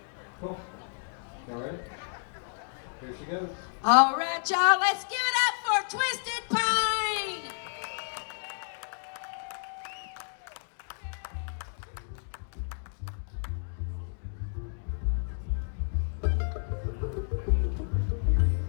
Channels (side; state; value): right; silent; digital silence